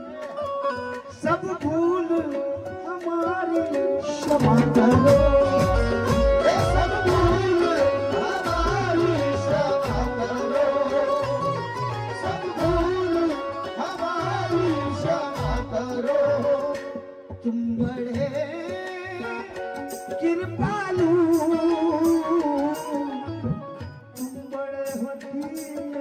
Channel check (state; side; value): identical; both; correlation 1.00